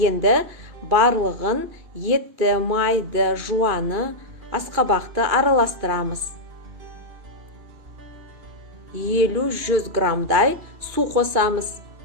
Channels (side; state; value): left; late; 2.4 ms